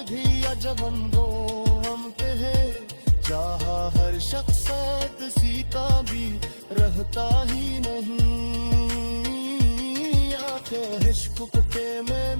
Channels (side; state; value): both; inverted; correlation -1.00